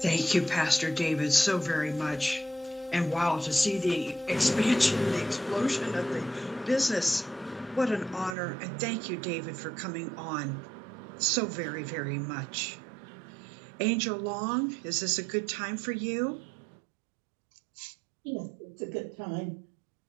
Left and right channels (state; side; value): drops out; left; at 8.3 s